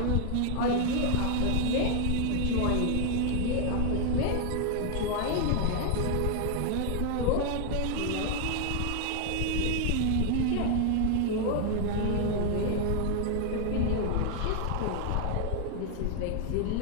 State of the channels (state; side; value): different; both; correlation 0.00